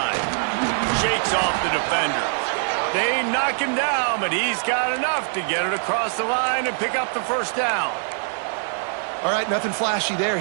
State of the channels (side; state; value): left; silent; digital silence